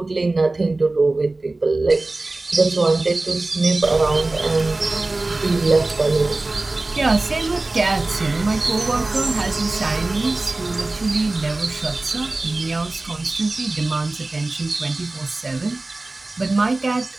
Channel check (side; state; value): left; quieter; 3.1 dB